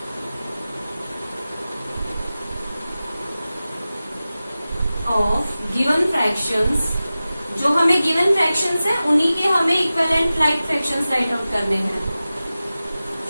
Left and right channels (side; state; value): both; inverted; correlation -0.95